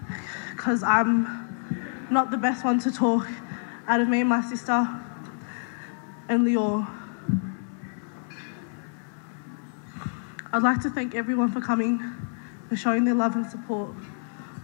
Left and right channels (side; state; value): right; silent; 60 dB below the other